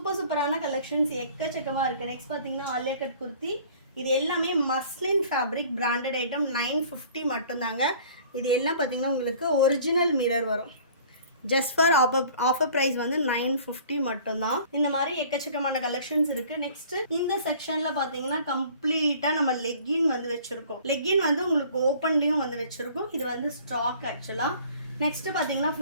சூப்பரான கலெக்ஷன்ஸ் எக்கச்சக்கமாக இருக்குது. நெக்ஸ்ட் பார்த்தீங்கன்னா ஆலியா கட் குர்த்தி. இது எல்லாமே மஸ்லின் ஃபேப்ரிக், பிராண்டட் ஐட்டம், 950 மட்டும்தாங்க. இது எல்லாம் பார்த்தீங்கன்னா உங்களுக்கு ஒரிஜினல் மிரர் வரும். ஜஸ்ட் ஃபார் ஆஃபர் ப்ரைஸ் வந்து 950 மட்டும்தான். இந்த மாதிரி எக்கச்சக்கமான கலெக்ஷன்ஸ் இருக்குது. நெக்ஸ்ட் இந்த செக்ஷனில் பார்த்தீங்கன்னா கம்ப்ளீட்டாக நம்ம லெக்கின் வந்து வச்சுருக்கோம். லெக்கின் வந்து உங்களுக்கு ஓப்பன்லேயும் வந்து வச்சுருக்கோம். இது வந்து ஸ்டாக் ஆக்சுவலாக. நெக்ஸ்ட் பார்த்தீங்கன்னா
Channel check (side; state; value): both; inverted; correlation -0.50